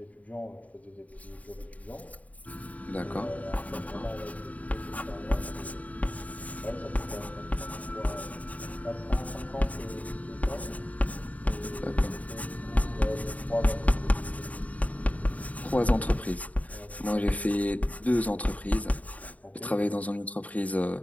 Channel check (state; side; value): late; right; 0.070 ms